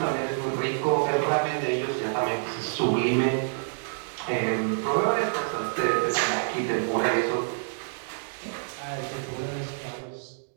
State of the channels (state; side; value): silent; left; digital silence